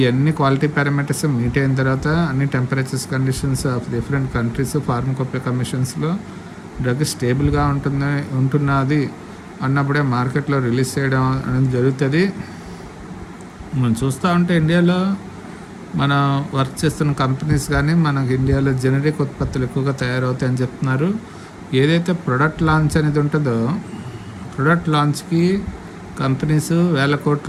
క్వాలిటీ పారామీటర్స్ మీట్ అయిన తర్వాత అన్ని temperatures conditions of different countries pharmacopoeia కమిషన్స్లో డ్రగ్ స్టేబుల్గా ఉంటున్నది అన్నప్పుడే మార్కెట్లో రిలీజ్ చేయడం అనేది జరుగుతుంది. మనం చూస్తూ ఉంటే ఇండియాలో మనం వర్క్ చేస్తున్న కంపెనీస్ కానీ మనకి ఇండియాలో జనరిక్ ఉత్పత్తులు ఎక్కువగా తయారవుతాయని చెప్తున్నారు. ఏదైతే ప్రొడక్ట్ లాంచ్ అనేది ఉంటుందో, ప్రొడక్ట్ లాంచ్కి కంపెనీస్ వేల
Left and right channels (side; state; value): both; identical; correlation 1.00